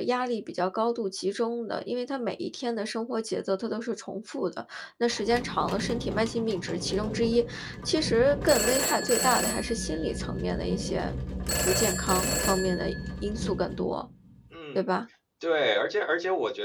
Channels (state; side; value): identical; both; correlation 1.00